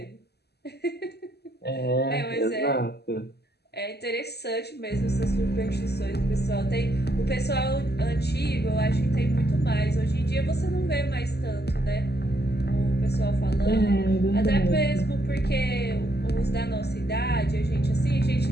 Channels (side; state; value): right; late; 0.47 ms